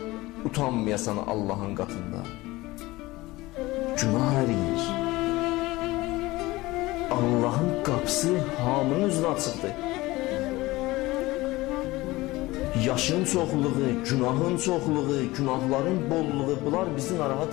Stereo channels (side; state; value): right; quieter; 19.8 dB